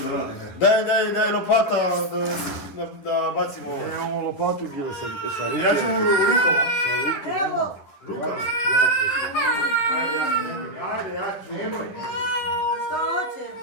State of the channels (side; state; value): right; late; 11 ms